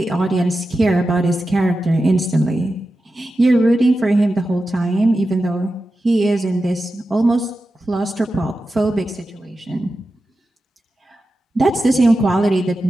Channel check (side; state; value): both; normal; correlation 0.92